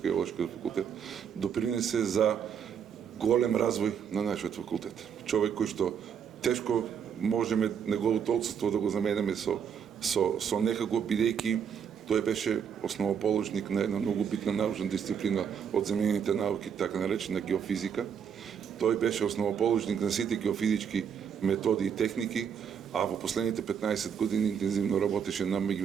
факултет, допринесе за голем развој на нашиот факултет. Човек кој што тешко можеме неговото отсутство да го заменеме со некако, бидејќи тој беше основоположник на една многу битна научна дисциплина од земјените науки, така наречена геофизика. Тој беше основоположник на сите геофизички методи и техники, а во последните 15 години интензивно работеше на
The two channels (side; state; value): left; quieter; 7.6 dB